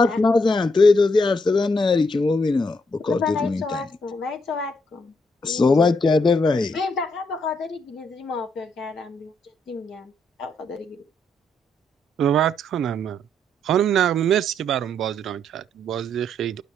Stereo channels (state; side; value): normal; both; correlation 0.75